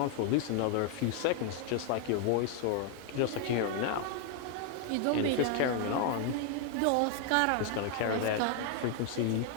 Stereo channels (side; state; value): both; different; correlation 0.00